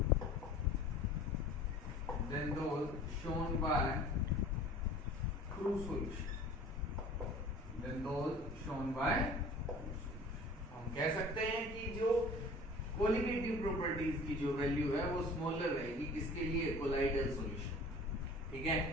shown by true solution, हम कह सकते हैं कि जो कोलिगेटिव प्रॉपर्टीज की जो वैल्यू है वो स्मॉलर रहेगी, किसके लिए? कोलाइडल सॉल्यूशन, ठीक है।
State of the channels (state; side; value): normal; both; correlation 0.45